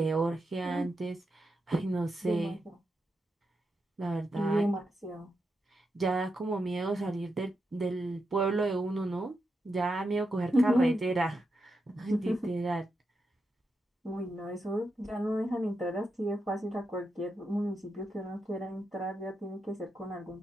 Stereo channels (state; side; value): normal; both; correlation 0.86